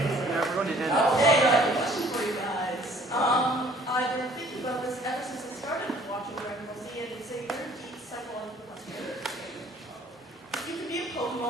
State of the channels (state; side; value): normal; both; correlation 0.56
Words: Okay, question for you guys. I've been thinking about this ever since I started watching Dragonball Z, and it's a very deep psychological question. If you could be a